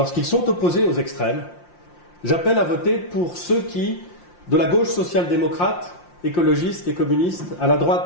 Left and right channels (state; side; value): late; right; 5.7 ms